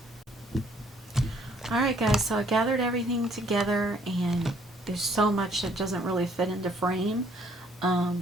Alright guys, so I gathered everything together, and there's so much that doesn't really fit into frame,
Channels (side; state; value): both; normal; correlation 0.63